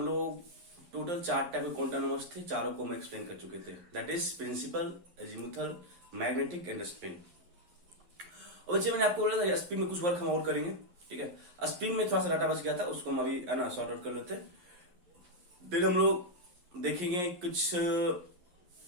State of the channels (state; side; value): late; left; 11 ms